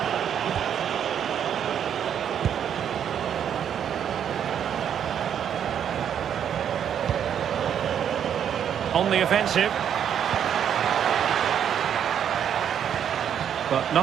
On the offensive. But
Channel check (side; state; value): left; quieter; 8.9 dB